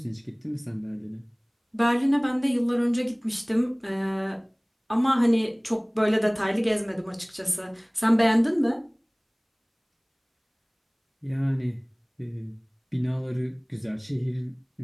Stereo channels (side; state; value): both; identical; correlation 1.00